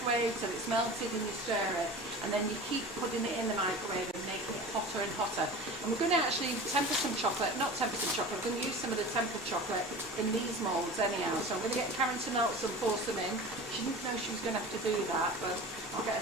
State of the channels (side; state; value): both; normal; correlation 0.35